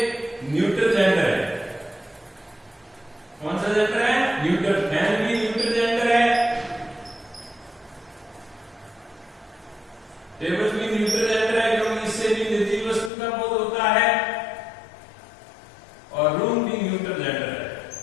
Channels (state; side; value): drops out; right; at 13.1 s